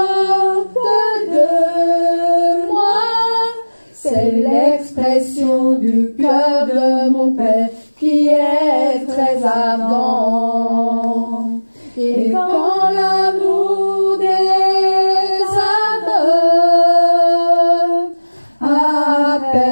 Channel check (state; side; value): inverted; both; correlation -1.00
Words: de moi, c'est l'expression du cœur de mon Père qui est très ardent. Et quand l'amour des âmes